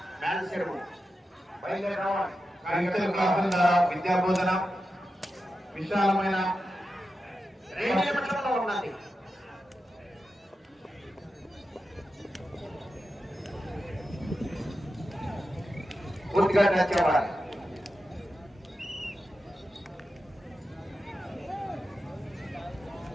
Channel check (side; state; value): both; normal; correlation 0.90